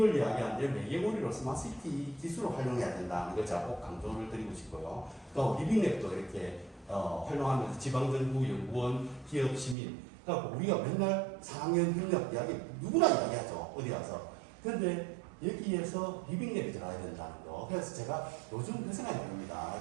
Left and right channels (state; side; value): drops out; left; at 9.8 s